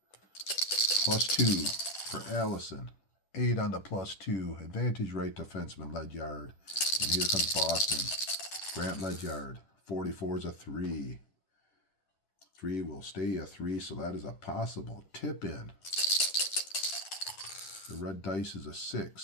+2 for Allison. 8 on the +2. Advantage right defenseman Ledyard. And here comes Boston. Grant Ledyard. 44 is a 3. 3 will stay a 3, so that is a possible tip-in. The red dice is a 6,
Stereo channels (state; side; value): late; right; 10 ms